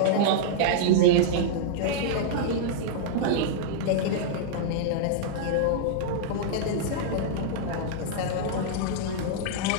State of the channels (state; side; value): different; both; correlation -0.02